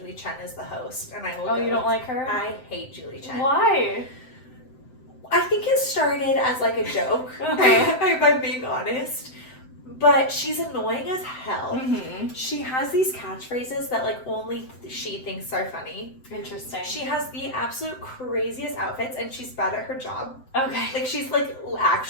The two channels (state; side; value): late; right; 7.8 ms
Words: Chen is the host, and I will. Oh, you don't like her? I hate Julie Chen. Why? I think it started as like a joke, if I'm being honest. But she's annoying as hell. Mm-hmm. She has these catchphrases that like only she thinks are funny. Interesting. She has the absolute craziest outfits, and she's bad at her job. Okay. Like she's like